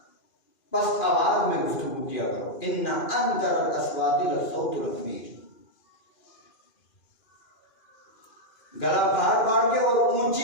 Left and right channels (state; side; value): late; right; 2.4 ms